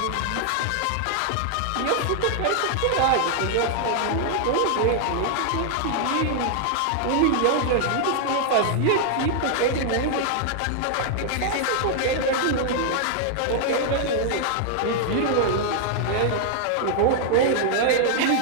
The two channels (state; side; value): different; both; correlation -0.01